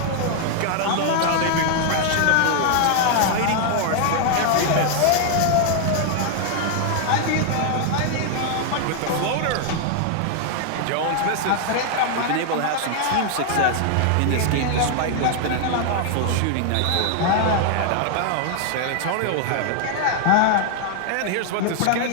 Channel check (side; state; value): both; different; correlation 0.00